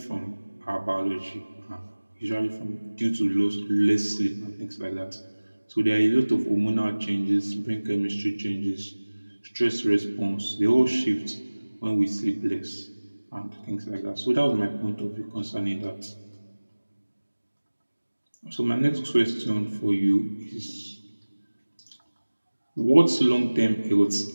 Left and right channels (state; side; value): inverted; both; correlation -1.00